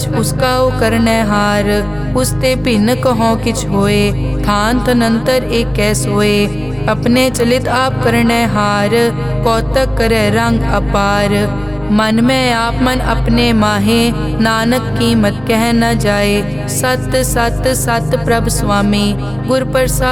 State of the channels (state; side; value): noise; left; hum, 21 dB below the sound